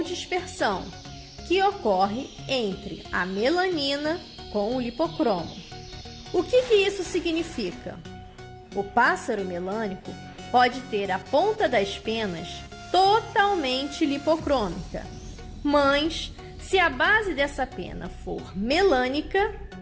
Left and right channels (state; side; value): identical; both; correlation 1.00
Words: dispersão, que ocorre entre a melanina com o lipocromo. O que isso significa? O pássaro melânico pode ter a ponta das penas totalmente lipocrômica, mas se a base dessa pena for melânica,